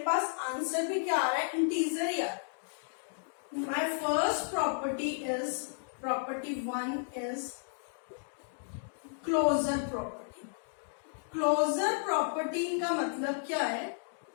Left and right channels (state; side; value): silent; right; digital silence